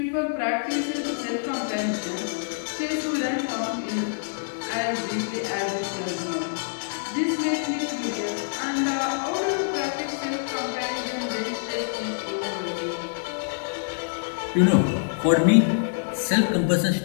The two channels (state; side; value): silent; right; digital silence